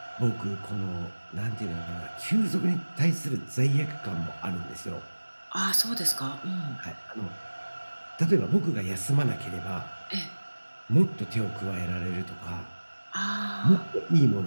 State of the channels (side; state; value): both; inverted; correlation -1.00